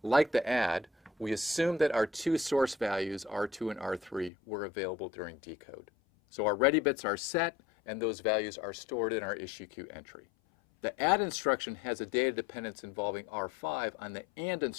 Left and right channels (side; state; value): right; drops out; at 4.3 s